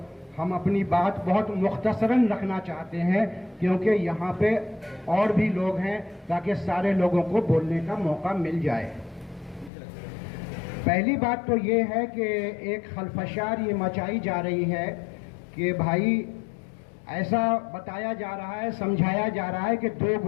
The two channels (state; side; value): drops out; right; at 9.7 s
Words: हम अपनी बात बहुत मुख्तसरन रखना चाहते हैं क्योंकि यहाँ पे और भी लोग हैं, ताकि सारे लोगों को बोलने का मौका मिल जाए। पहली बात तो ये है कि एक खलफशार ये मचाई जा रही है कि भाई ऐसा बताया जा रहा है, समझाया जा रहा है कि दो